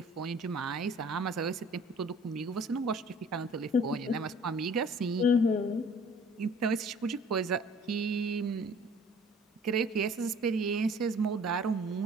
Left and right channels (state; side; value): normal; both; correlation 0.51